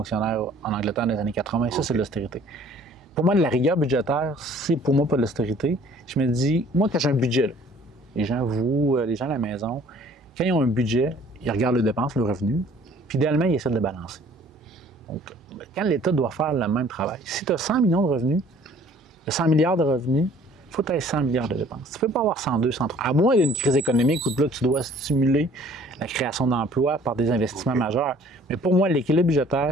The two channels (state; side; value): normal; both; correlation 0.54